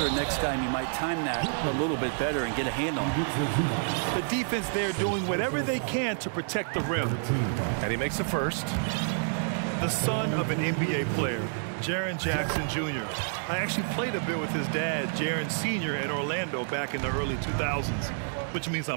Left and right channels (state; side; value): silent; left; 59 dB below the other